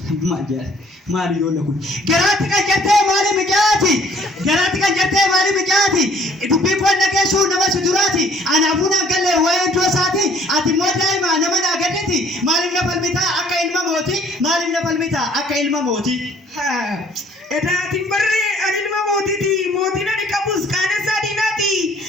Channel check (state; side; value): normal; both; correlation 0.58